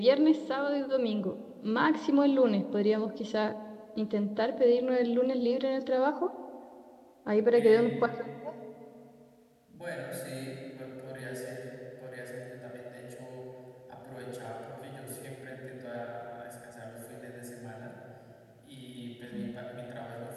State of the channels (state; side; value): identical; both; correlation 1.00